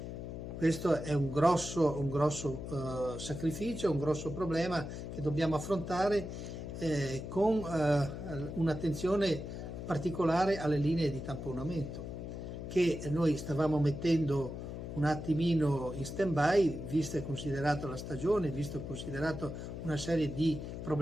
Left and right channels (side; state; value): left; noise; hum, 7 dB below the sound